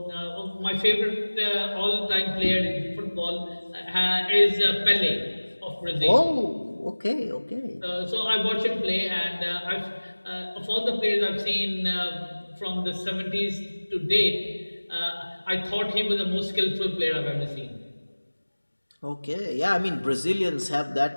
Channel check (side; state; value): both; inverted; correlation -1.00